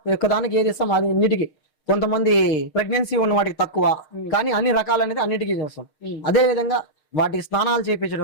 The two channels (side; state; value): right; late; 6.5 ms